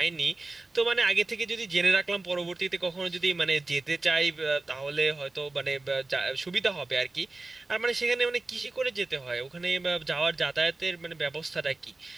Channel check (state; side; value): quieter; left; 3.2 dB